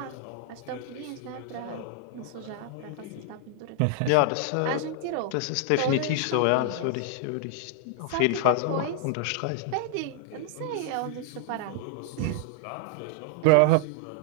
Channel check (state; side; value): different; both; correlation 0.00